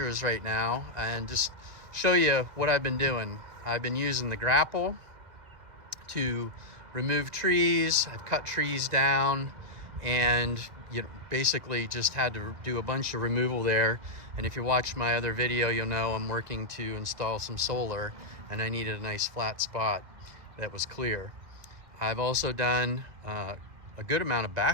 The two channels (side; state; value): left; late; 1.9 ms